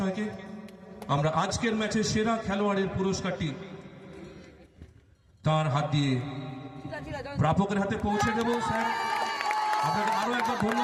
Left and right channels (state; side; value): identical; both; correlation 1.00